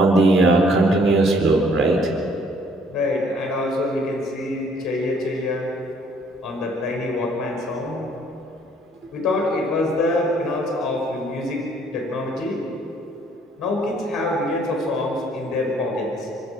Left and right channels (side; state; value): both; normal; correlation 0.62